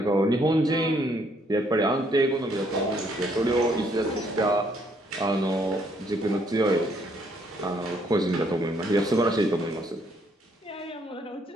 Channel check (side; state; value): both; normal; correlation 0.69